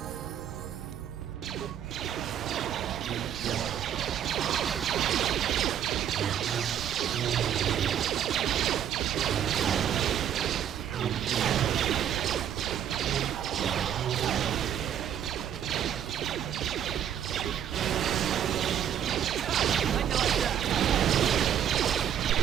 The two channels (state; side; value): quieter; left; 9.7 dB